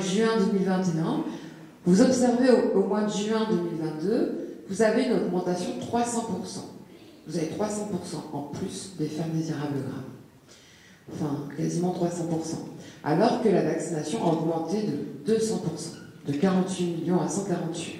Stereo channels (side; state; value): both; identical; correlation 1.00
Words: juin 2021, vous observez au mois de juin 2022, vous avez une augmentation de 300%. Vous avez 300% en plus d'effets indésirables graves. Enfin, quasiment 300%. Alors que la vaccination a augmenté de 200%, de 48 millions à